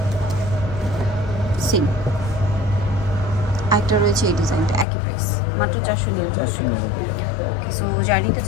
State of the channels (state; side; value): drops out; right; at 4.9 s